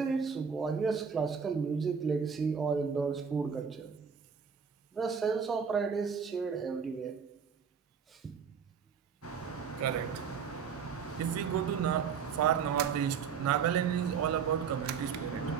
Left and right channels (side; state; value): left; quieter; 6.6 dB